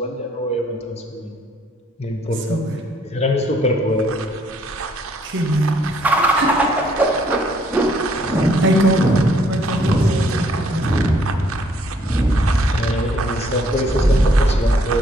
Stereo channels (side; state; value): both; normal; correlation 0.66